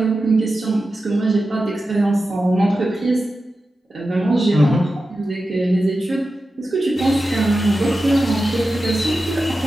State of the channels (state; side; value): normal; both; correlation 0.92